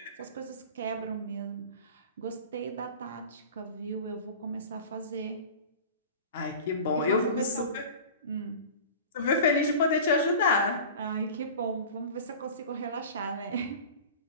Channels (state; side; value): inverted; both; correlation -0.36